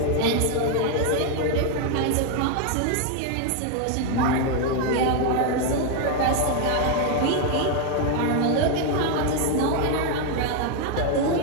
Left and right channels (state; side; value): different; both; correlation 0.01